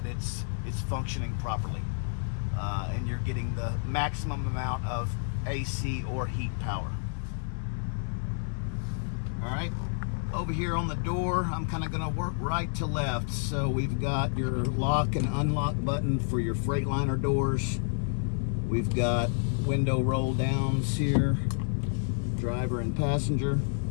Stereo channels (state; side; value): silent; right; digital silence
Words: it's functioning properly, and you're getting the maximum amount of AC or heat power. All right, over here on the door, I'm kind of going to work right to left. So we've got your lock and unlock button for your Freightliner doors. We've got window roll downs here, driver and passenger.